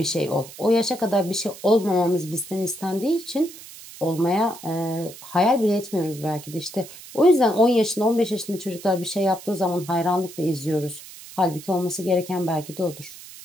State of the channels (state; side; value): noise; right; hiss, 16 dB below the sound